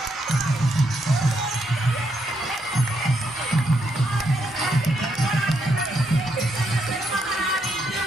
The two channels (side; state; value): both; normal; correlation 0.77